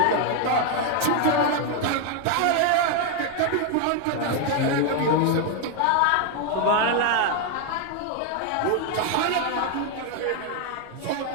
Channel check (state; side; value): different; both; correlation 0.01